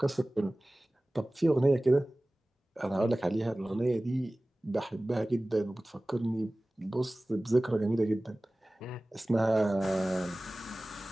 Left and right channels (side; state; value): both; normal; correlation 0.98